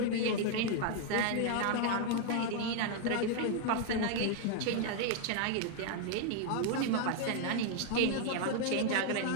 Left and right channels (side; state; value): both; different; correlation 0.00